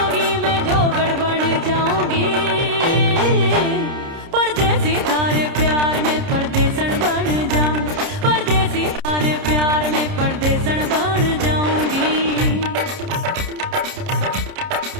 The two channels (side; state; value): left; late; 30 ms